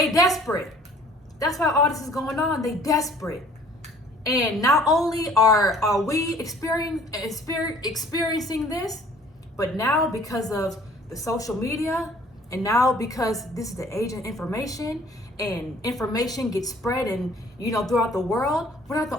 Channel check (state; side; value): normal; both; correlation 0.54